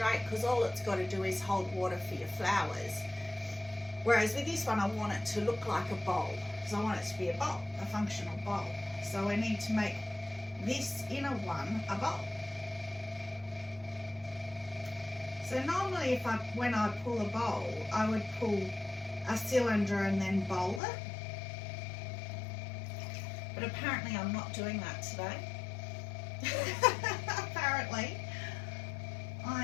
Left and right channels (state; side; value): drops out; right; at 20.8 s